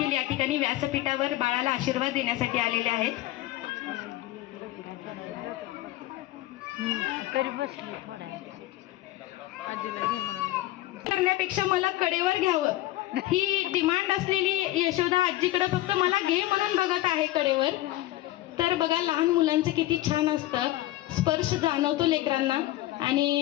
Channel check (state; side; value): quieter; right; 16.3 dB